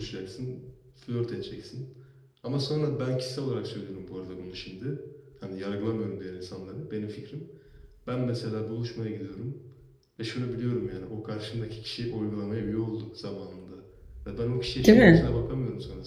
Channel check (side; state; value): both; identical; correlation 1.00